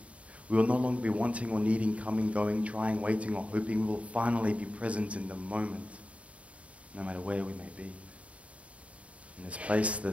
We will no longer be wanting or needing, coming, going, trying, waiting, or hoping. We will finally be present in the moment, no matter where we may be. In this place, the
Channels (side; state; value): left; late; 0.065 ms